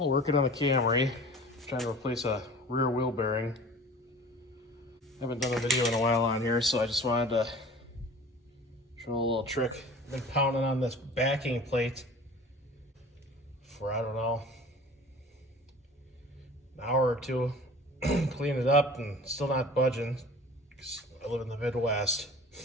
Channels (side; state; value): both; normal; correlation 0.42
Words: working on the Camry, trying to replace a rear wheel bearing. Haven't done a video in a while on here, so I just wanted to show a little trick. I've been pounding on this backing plate for, I don't know, an hour or two. Clean it up and still not budging because I live in the Midwest.